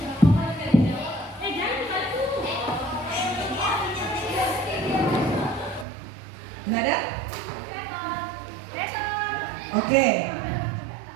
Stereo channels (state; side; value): drops out; left; at 5.9 s